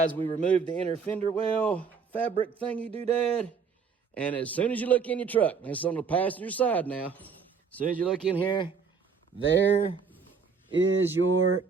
we removed the inner fender well fabric thingy doodad. And as soon as you look in your truck, it's on the passenger side now. As soon as you look in here, there is your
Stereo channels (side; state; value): left; quieter; 5.6 dB